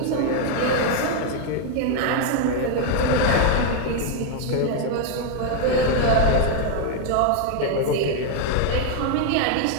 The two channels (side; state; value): both; different; correlation 0.01